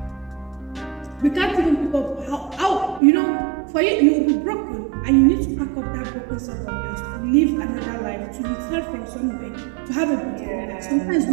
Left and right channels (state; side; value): drops out; left; at 3.0 s